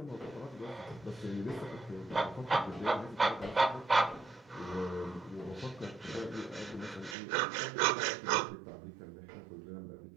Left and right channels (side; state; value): left; drops out; at 7.2 s